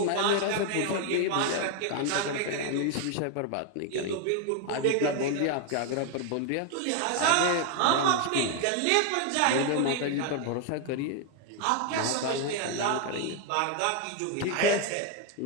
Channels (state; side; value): different; both; correlation 0.01